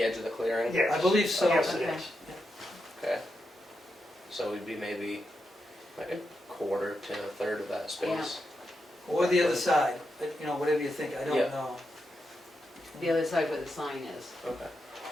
edge of the clearing? Yes. I believe so. Yes, it Okay. is. Okay. So we'd be maybe like a quarter to a third of that space. Or the other side, but, you know, whatever you think, I don't Yeah. know. The other side where the sign is. Okay.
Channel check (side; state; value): both; normal; correlation 0.85